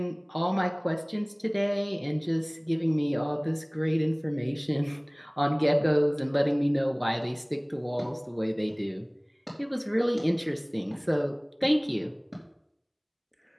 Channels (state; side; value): identical; both; correlation 1.00